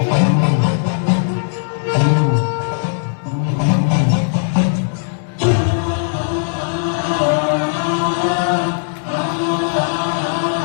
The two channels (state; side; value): silent; right; digital silence